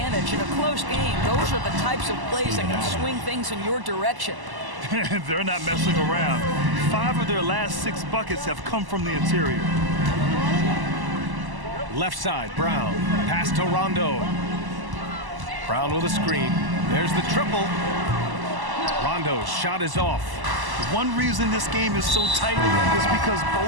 in a close game. Those are the types of plays that can swing things in your direction. They're not messing around. 5 of their last 6 buckets have come from the interior. Left side, Brown. Pass to Rondo. Brown with a screen. There's the triple. Rondo's shot is off. One reason this game is so tight is because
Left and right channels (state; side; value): late; left; 1.0 ms